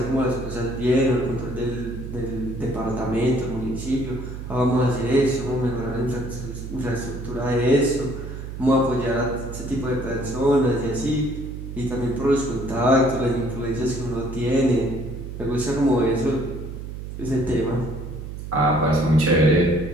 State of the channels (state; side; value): noise; right; hum, 9 dB below the sound